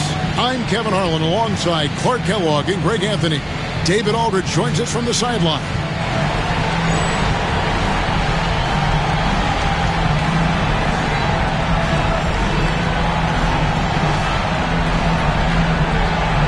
I'm Kevin Harlan alongside Clark Kellogg and Greg Anthony. David Aldridge joins us from the sideline.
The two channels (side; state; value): both; identical; correlation 1.00